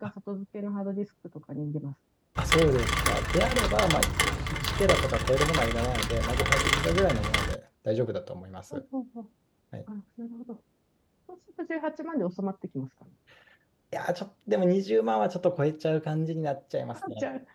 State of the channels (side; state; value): both; identical; correlation 1.00